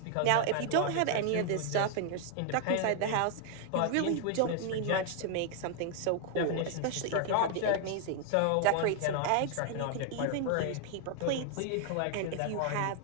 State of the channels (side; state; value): both; different; correlation 0.00